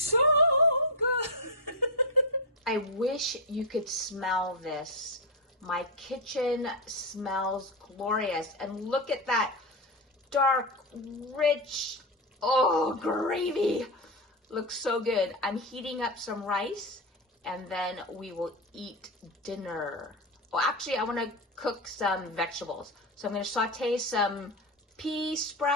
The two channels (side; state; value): both; normal; correlation 0.10